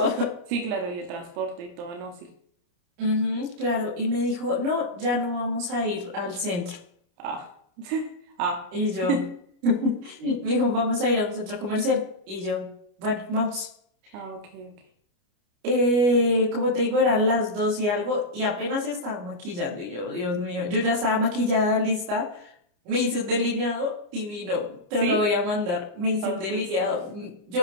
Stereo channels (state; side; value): late; left; 29 ms